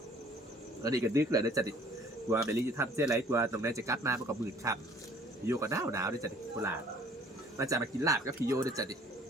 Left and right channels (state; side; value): normal; both; correlation 0.54